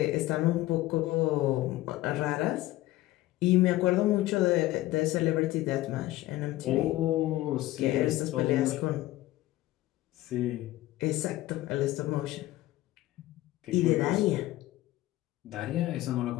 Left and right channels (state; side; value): quieter; right; 16.7 dB